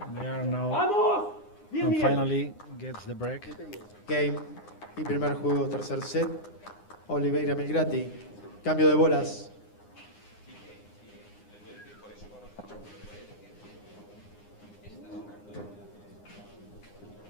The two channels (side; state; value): right; late; 9.8 ms